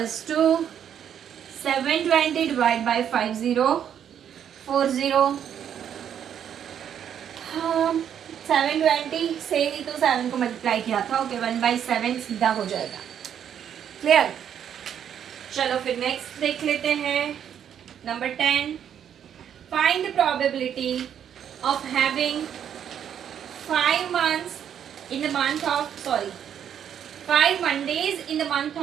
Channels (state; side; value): quieter; left; 9.1 dB